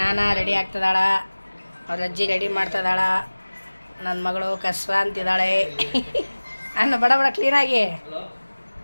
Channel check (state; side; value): inverted; both; correlation -1.00